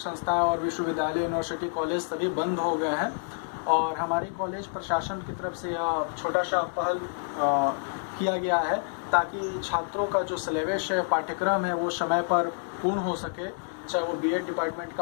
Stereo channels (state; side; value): silent; right; digital silence